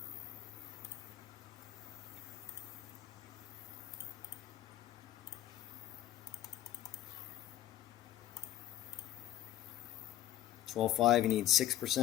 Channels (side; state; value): right; quieter; 13.1 dB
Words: $12.5, you need